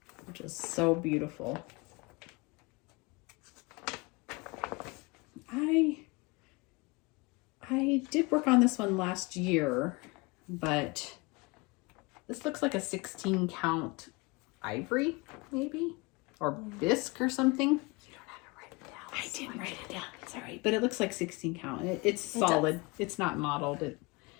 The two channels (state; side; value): quieter; right; 26.2 dB